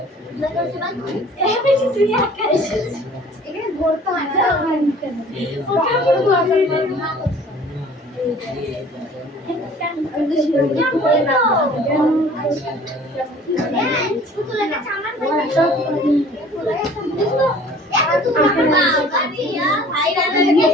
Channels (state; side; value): normal; both; correlation 0.50